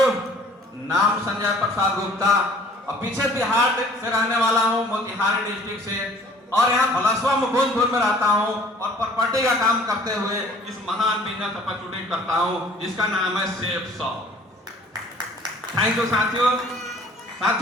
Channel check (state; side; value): normal; both; correlation 0.52